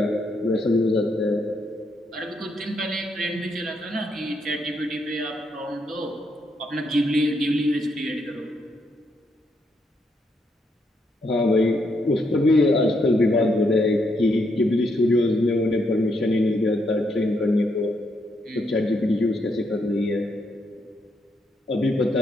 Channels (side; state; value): both; normal; correlation 0.77